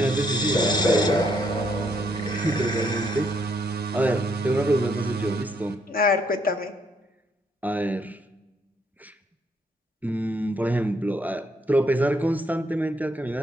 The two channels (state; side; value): normal; both; correlation 0.71